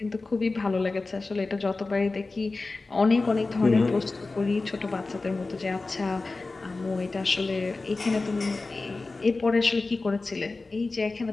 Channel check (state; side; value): quieter; right; 3.5 dB